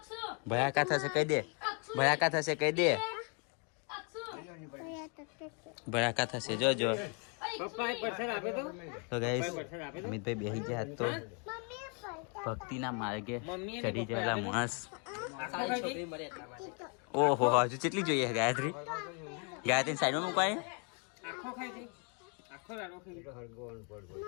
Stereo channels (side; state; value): right; quieter; 36.0 dB